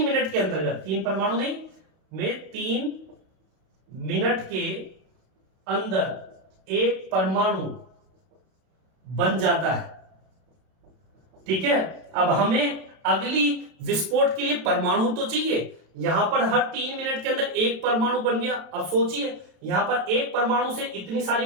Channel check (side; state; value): left; late; 32 ms